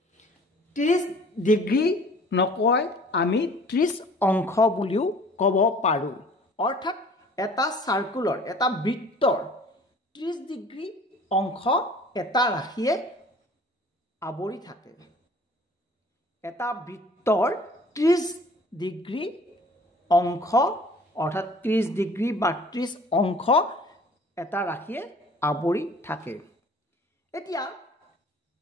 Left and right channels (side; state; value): both; normal; correlation 0.50